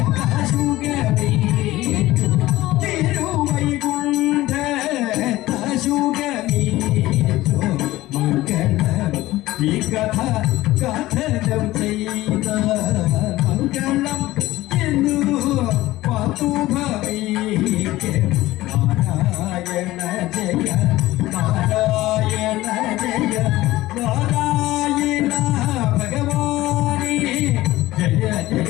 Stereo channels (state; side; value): quieter; right; 17.1 dB